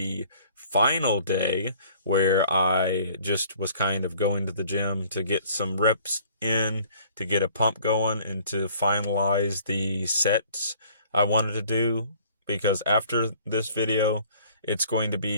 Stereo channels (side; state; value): both; inverted; correlation -0.54